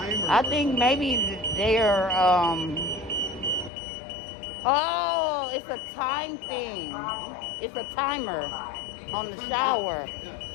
I think maybe they're, oh, it's a time thing. It's a timer on the shower. Yeah.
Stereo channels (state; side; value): drops out; right; at 3.7 s